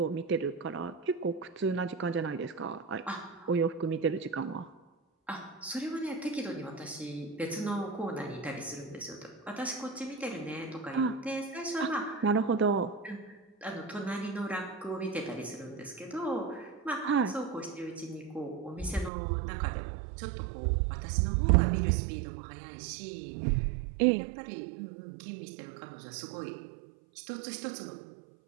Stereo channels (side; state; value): left; drops out; at 19.1 s